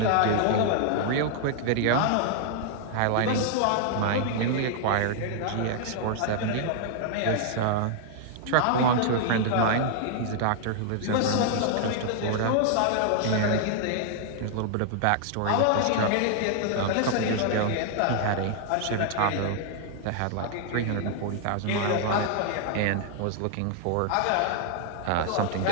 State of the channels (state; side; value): different; both; correlation 0.00